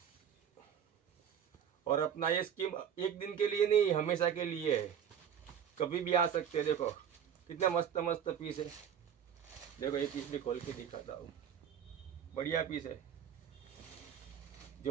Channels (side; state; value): left; quieter; 8.5 dB